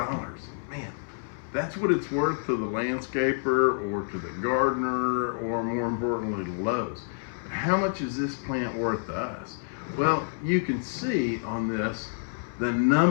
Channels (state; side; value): silent; right; 59 dB below the other